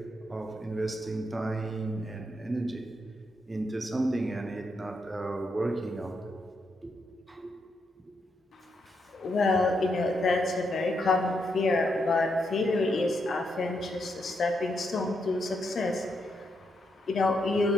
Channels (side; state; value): both; normal; correlation 0.81